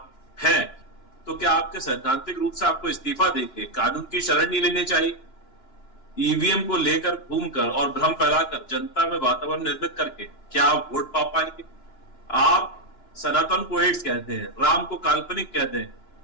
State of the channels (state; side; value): late; right; 2.9 ms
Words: हैं, तो क्या आपके सैद्धांतिक रूप से आपको इस्तीफा देके कानून की शरण नहीं लेनी चाहिए? ईवीएम को लेकर घूमकर और भ्रम फैलाकर जनता में वातावरण निर्मित करके क्या आप वोट पा पाएंगे? आप सनातन को एड्स कहते हैं, राम को काल्पनिक कहते हैं,